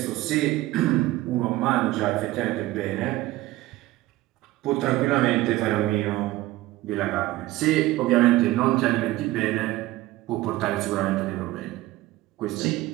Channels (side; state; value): left; quieter; 17.3 dB